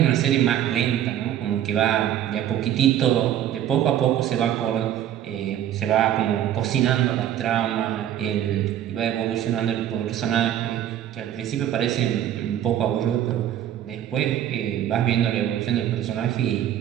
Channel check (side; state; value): left; quieter; 11.1 dB